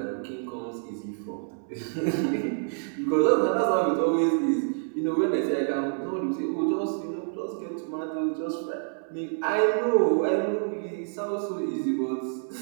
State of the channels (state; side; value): silent; left; 60 dB below the other